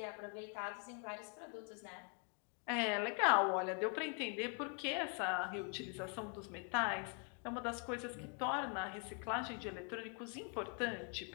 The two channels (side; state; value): right; quieter; 38.8 dB